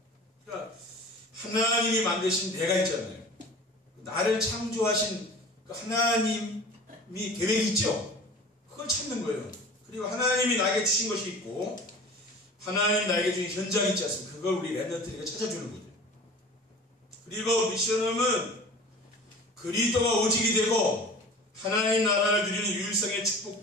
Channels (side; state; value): both; normal; correlation 0.40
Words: 그러니까 하나님이 만드신 내가 있잖아요. 나를 창조하신 그 하나님이 계획이 있죠. 그걸 찾는 거예요. 그리고 하나님이 나에게 주신 것이 있고 하나님이 나에게 주신 현장이 있지 않습니까? 그걸 우리 렘넌트에게 찾아주는 거죠. 그리고 미션홈은 그리스도가 오직이 되고 하나님 나라를 누리는 유일성의